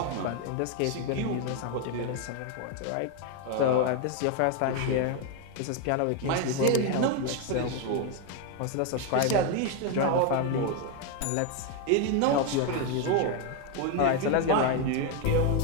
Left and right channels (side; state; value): both; different; correlation 0.01